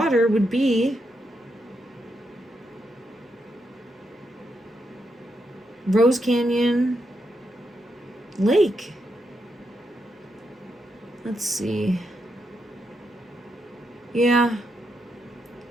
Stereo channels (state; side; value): normal; both; correlation 0.82